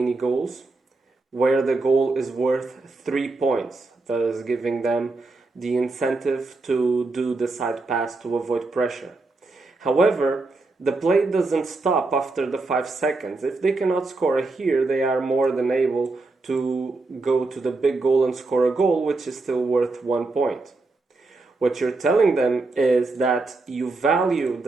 goals, where the goal is worth 3 points, thus giving them the incentive to do the side pass to avoid pressure. However, the play doesn't stop after the 5 seconds. If they cannot score here, they are more than able to go to the big goal and score a goal, which is still worth 1 point. What you're telling them is that you value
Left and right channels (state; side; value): quieter; left; 3.4 dB